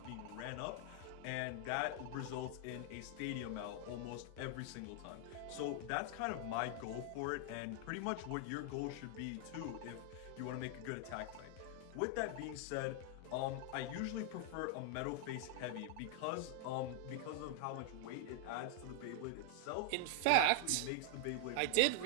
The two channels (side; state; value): both; different; correlation 0.00